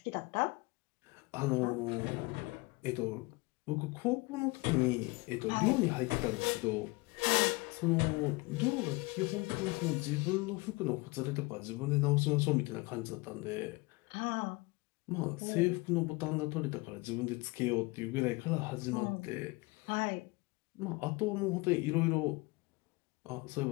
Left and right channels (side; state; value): right; quieter; 24.6 dB